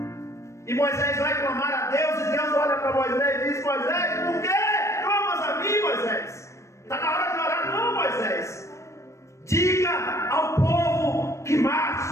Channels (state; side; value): late; right; 0.14 ms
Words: E Moisés vai clamar a Deus, e Deus olha para Moisés e diz: Moisés, por que clamas a mim, Moisés? Está na hora de orar. Não, Moisés, diga ao povo que